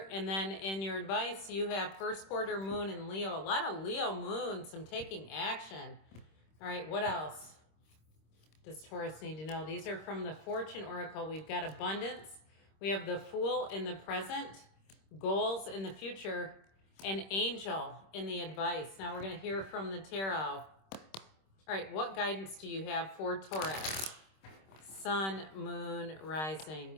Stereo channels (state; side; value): late; right; 26 ms